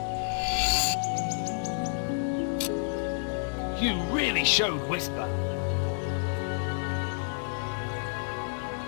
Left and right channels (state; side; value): silent; right; digital silence